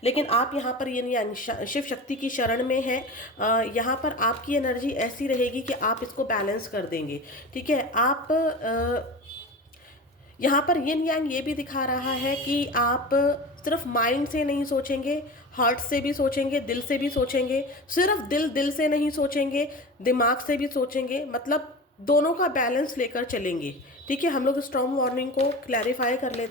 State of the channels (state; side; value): normal; both; correlation 0.31